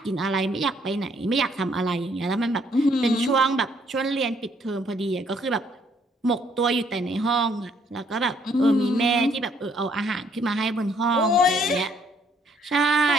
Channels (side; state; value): both; normal; correlation 0.66